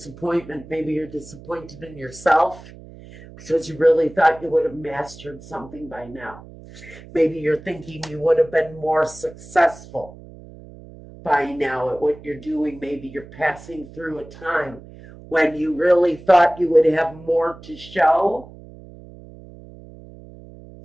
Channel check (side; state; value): right; noise; hum, 18 dB below the sound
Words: Maybe you're disappointed in yourself because you really thought you would have mastered something by now. Maybe you're thinking you would have been more successful by now at what you're doing. Maybe you're passing through a time when you really thought you would have more to show.